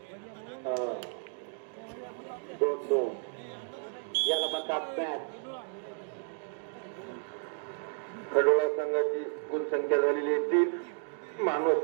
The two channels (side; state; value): left; silent; 56 dB below the other